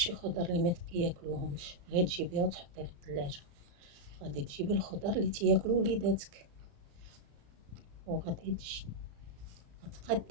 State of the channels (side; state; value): left; late; 35 ms